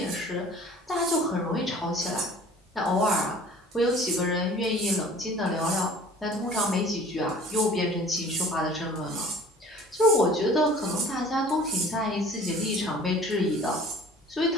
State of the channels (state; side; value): normal; both; correlation 0.48